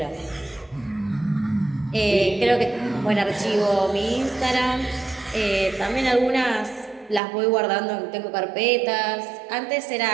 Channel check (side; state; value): left; drops out; at 7.2 s